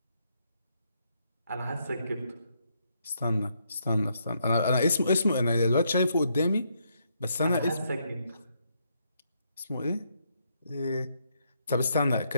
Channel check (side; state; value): both; inverted; correlation -0.76